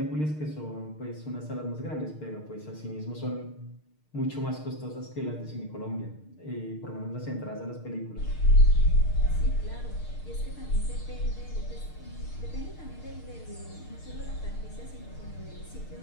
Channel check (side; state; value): right; late; 6.6 ms